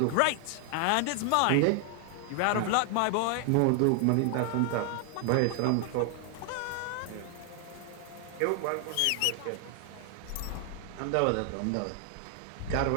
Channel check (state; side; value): different; both; correlation 0.00